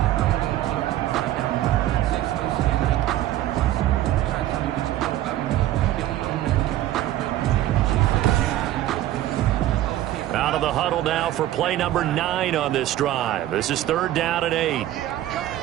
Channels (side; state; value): left; quieter; 13.8 dB